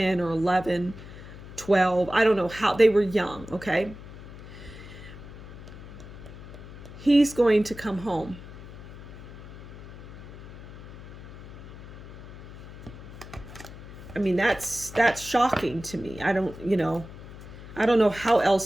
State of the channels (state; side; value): noise; left; hum, 14 dB below the sound